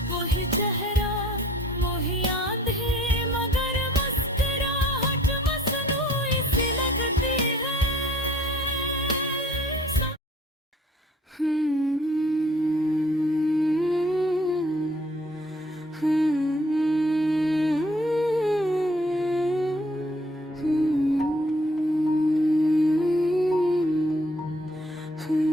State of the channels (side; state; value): both; normal; correlation 0.59